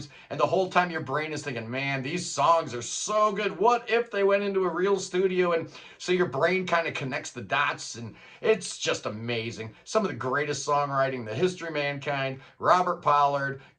And the whole time your brain is thinking, man, these songs are so good. What if they went into a real studio? And so your brain kind of connects the dots, and it's just amazing. Some of the greatest songwriting in the history of mankind. Robert Pollard,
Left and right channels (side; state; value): both; identical; correlation 1.00